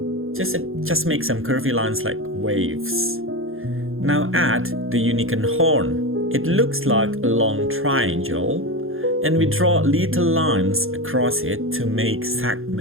Just make some curvy lines like waves. Now add the unicorn horn. It looks like a long triangle, and we draw little lines across it to make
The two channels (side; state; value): left; late; 0.60 ms